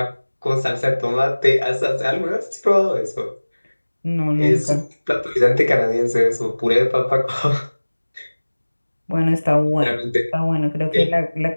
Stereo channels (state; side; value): inverted; both; correlation -1.00